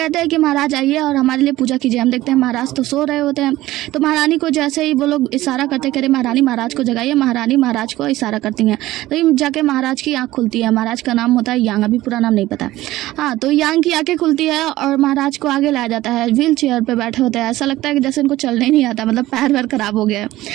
हैं कि महाराज आइए और हमारे लिए पूजा कीजिए। हम देखते हैं महाराज तो सो रहे होते हैं, तो महारानी को जैसे ही वो लोग इशारा करते कह रहे महारानी महाराज को जगाइए, महारानी महाराज को इशारा करती हैं तो जाके महाराज की आँख खुलती है। महाराज का नाम होता है यांग, अभी पूरा नाम नहीं पता। हाँ, तो यांग की आंखें खुलती है और महाराज को आगे लाया जाता है। व्हील चेयर पे बैठे होते हैं, ऐसा लगता है कि जैसे इनको चलने ही नहीं आता, मतलब पैर वैर खराब हो गया है।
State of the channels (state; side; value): quieter; left; 16.4 dB